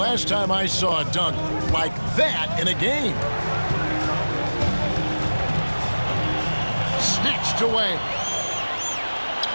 time I saw a dunk like that in a game. Snatched away.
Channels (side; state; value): both; inverted; correlation -1.00